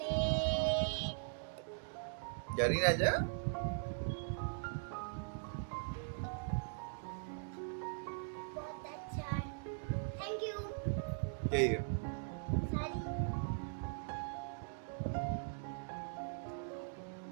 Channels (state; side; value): silent; left; digital silence